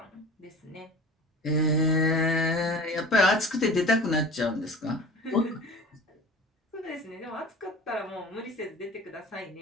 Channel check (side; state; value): both; normal; correlation 0.40